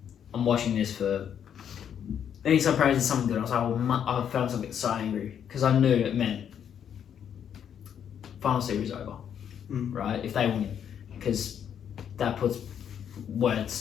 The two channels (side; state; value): right; quieter; 8.7 dB